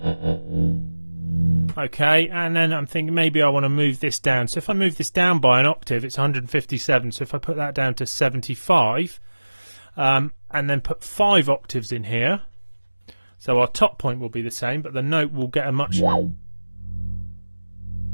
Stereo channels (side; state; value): both; inverted; correlation -1.00